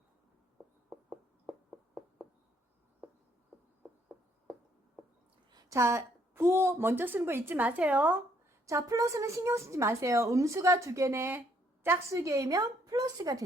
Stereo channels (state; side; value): normal; both; correlation 0.68